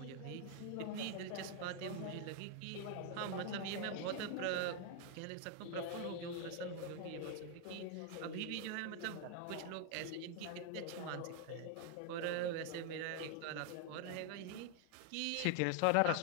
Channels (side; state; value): both; different; correlation 0.00